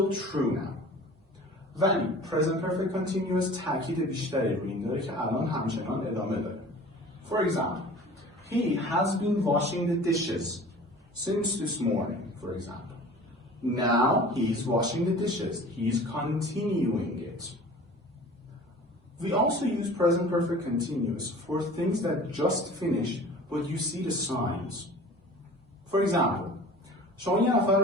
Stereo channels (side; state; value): both; normal; correlation 0.43